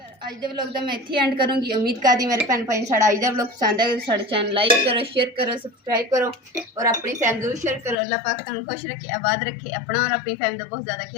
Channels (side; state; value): right; drops out; at 8.0 s